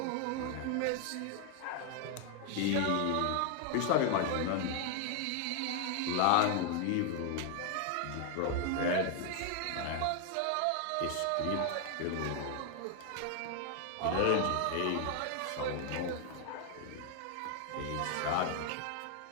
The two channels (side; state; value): both; different; correlation 0.01